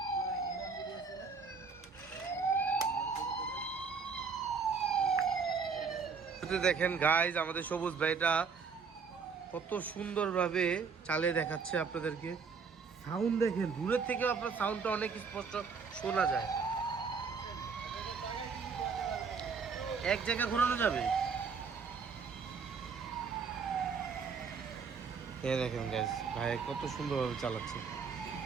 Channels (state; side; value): quieter; left; 5.5 dB